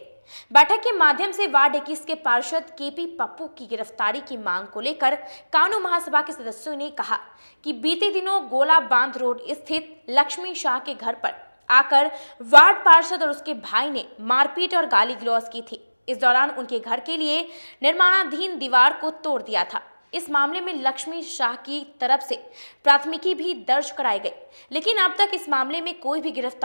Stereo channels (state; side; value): inverted; both; correlation -1.00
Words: बैठक के माध्यम से वार्ड 21 के पार्षद केपी पप्पू की गिरफ्तारी की मांग को लेकर कानू महासभा के सदस्यों ने कहा कि बीते दिनों गोला बांध रोड स्थित लक्ष्मी शाह के घर पर आकर वार्ड पार्षद और उसके भाई ने मारपीट और गाली गलौज की थी। इस दौरान उनके घर के लिए निर्माणाधीन दीवार को तोड़ दिया था। इस मामले में लक्ष्मी शाह की तरफ से प्राथमिकी भी दर्ज कराई गई, लेकिन अब तक इस मामले में कोई भी